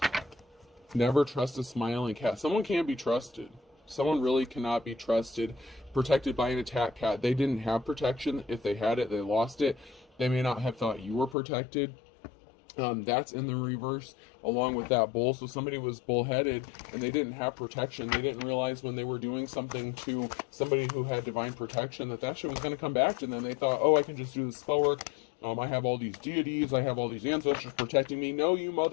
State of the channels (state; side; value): drops out; right; at 11.4 s